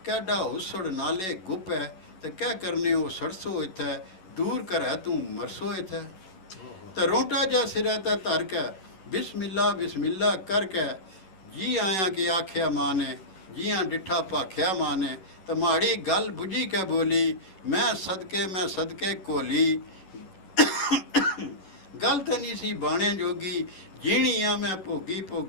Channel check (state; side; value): late; right; 11 ms